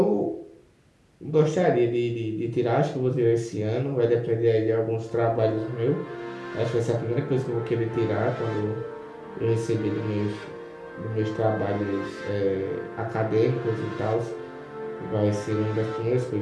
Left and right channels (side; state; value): both; identical; correlation 1.00